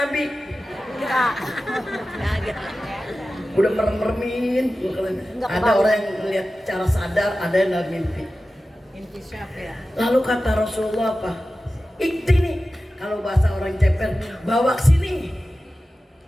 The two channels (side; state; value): both; normal; correlation 0.95